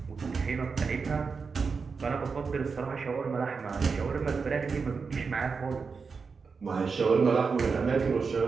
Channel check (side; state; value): left; quieter; 5.1 dB